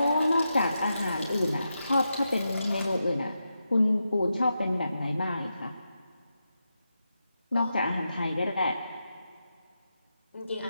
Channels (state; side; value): inverted; both; correlation -0.87